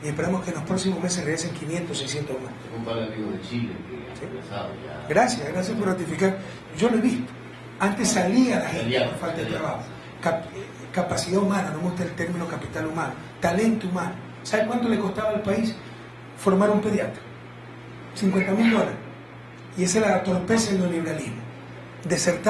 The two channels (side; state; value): both; identical; correlation 1.00